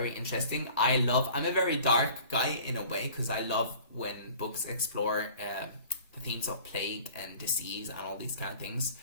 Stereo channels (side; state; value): both; inverted; correlation -0.47